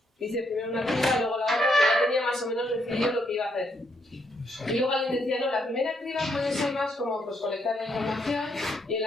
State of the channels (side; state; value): both; normal; correlation 0.75